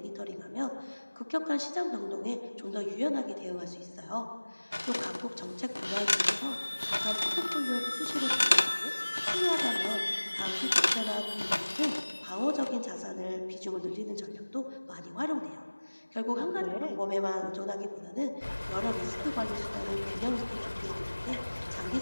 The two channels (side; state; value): both; inverted; correlation -1.00